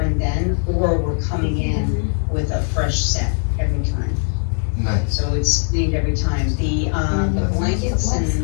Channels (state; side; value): silent; right; 55 dB below the other